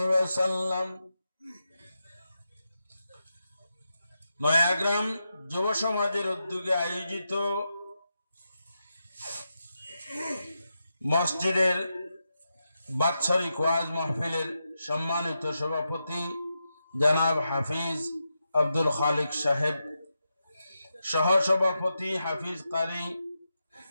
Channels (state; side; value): inverted; both; correlation -0.87